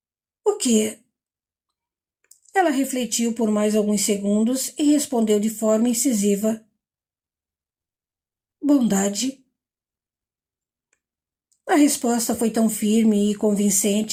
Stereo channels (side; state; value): both; identical; correlation 1.00